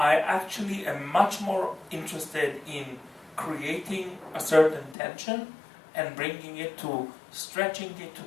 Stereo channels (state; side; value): drops out; right; at 5.0 s